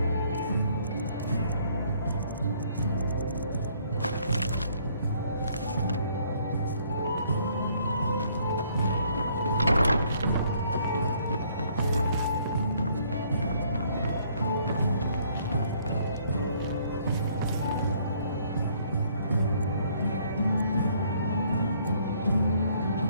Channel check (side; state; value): both; inverted; correlation -0.64